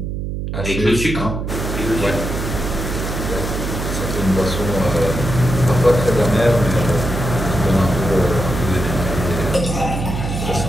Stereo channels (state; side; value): noise; right; hum, 4 dB below the sound